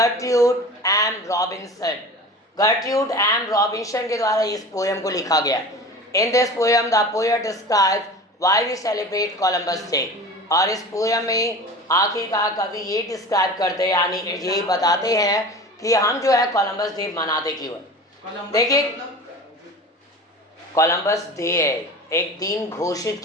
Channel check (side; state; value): both; normal; correlation 0.36